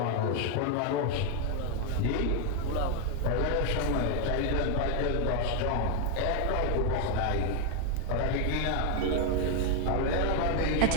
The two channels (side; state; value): both; different; correlation 0.01